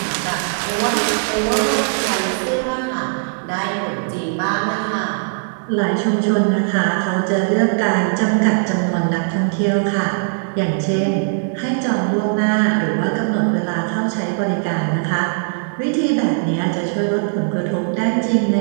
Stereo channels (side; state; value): left; silent; digital silence